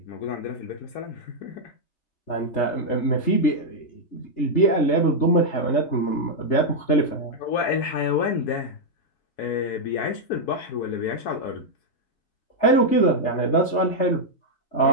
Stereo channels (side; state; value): right; late; 3.3 ms